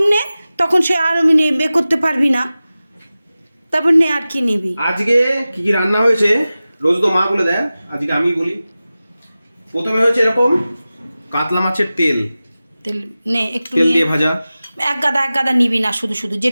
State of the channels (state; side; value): inverted; both; correlation -0.96